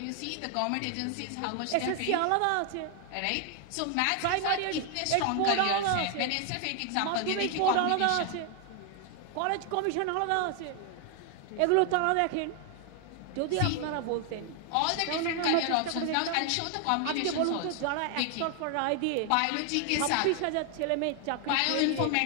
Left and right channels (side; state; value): both; different; correlation 0.00